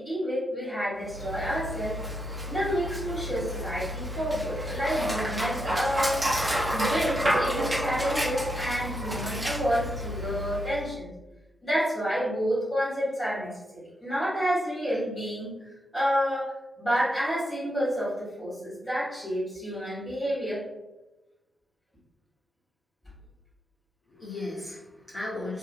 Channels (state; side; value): normal; both; correlation 0.82